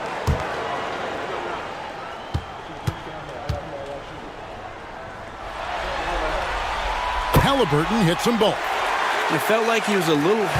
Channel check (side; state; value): both; identical; correlation 1.00